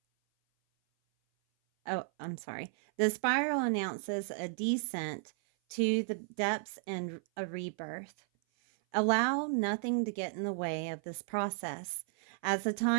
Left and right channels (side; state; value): left; silent; 55 dB below the other